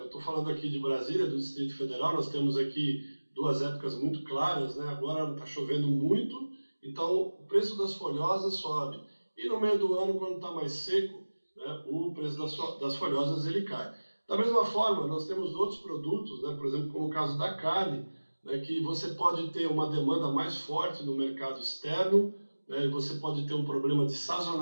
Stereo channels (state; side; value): inverted; both; correlation -1.00